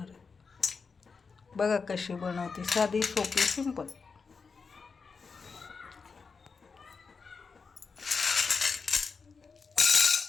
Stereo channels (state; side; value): quieter; right; 5.0 dB